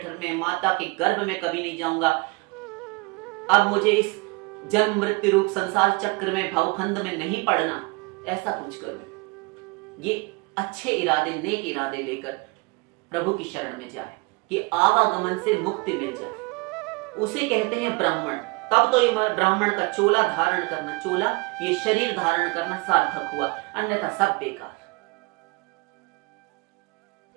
में, माता के गर्भ में कभी नहीं जाऊंगा। अब मुझे इस जन्म मृत्यु रूप संसार चक्र में, भवखंड में नहीं पड़ना, ऐसा कुछ करूं। ये अच्छे इरादे, नेक इरादे लेकर प्रभु की शरण में जाए कि आवागमन से मुक्ति मिल जाए, उसे कहते हैं ब्राह्मण। तब तो ये ब्राह्मण का चोला धारण करना, चोला ये शरीर धारण करना सार्थक हुआ, अन्यथा सब बेकार।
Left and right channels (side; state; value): left; quieter; 27.2 dB